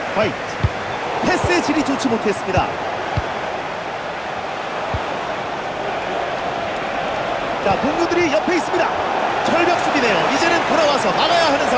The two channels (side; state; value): both; identical; correlation 1.00